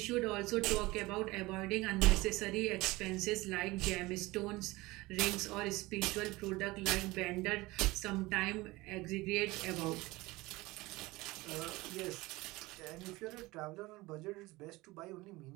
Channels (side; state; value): left; quieter; 21.0 dB